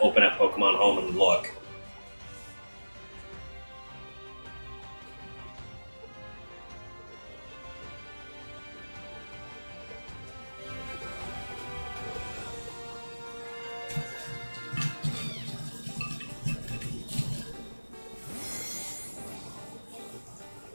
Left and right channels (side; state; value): both; inverted; correlation -1.00